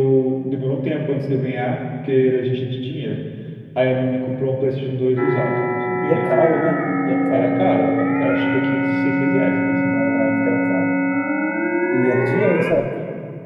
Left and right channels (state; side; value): identical; both; correlation 1.00